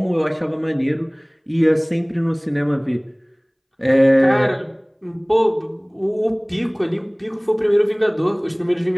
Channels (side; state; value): both; identical; correlation 1.00